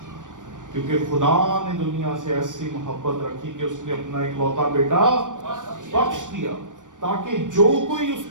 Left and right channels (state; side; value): late; left; 0.87 ms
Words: کیونکہ خدا نے دنیا سے ایسی محبت رکھی کہ اس نے اپنا اکلوتا بیٹا بخش دیا تاکہ جو کوئی اس